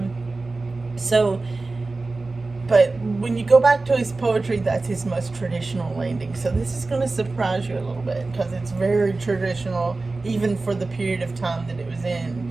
But when you go back to his poetry, that's his most traditional landing. So this is going to surprise you a little bit, because it's very traditional, even for the period of time that it was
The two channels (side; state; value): left; quieter; 3.5 dB